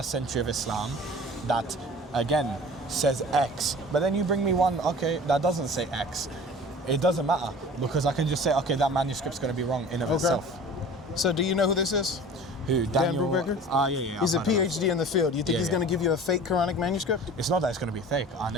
century of Islam that again says X, but then you bring me one, that doesn't say X, it doesn't matter, because I can just say, that manuscript's gonna be wrong in of itself. So do you know who this is? Who? Dan Brubaker? Yeah. He's a PhD in the field. You think he's going to give you a fake Quranic manuscript? It's not that it's going to be fake. I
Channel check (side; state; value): both; normal; correlation 0.42